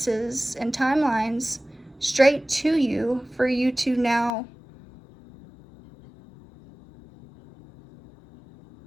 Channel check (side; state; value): right; drops out; at 4.3 s